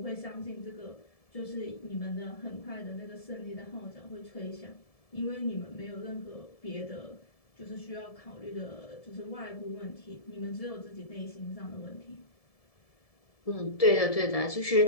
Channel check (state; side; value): late; right; 1.7 ms